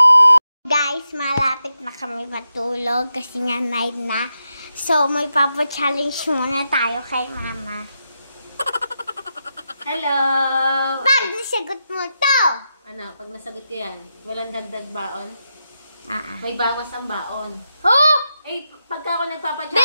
Guys, malapit na kami matulog kasi nga night na. So, may papa-challenge muna tayo kay mama. Hello! Pag nasagot mo to! Ano, pag nasagot ko yan, walang dagdag baon? Ah. May bawas ang baon. Oh! Eh, pagka ako 20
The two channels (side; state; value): both; inverted; correlation -0.86